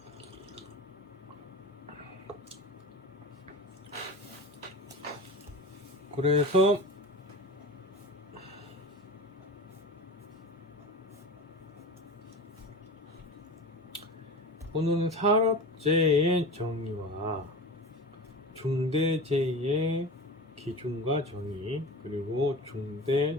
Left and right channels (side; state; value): both; normal; correlation 0.31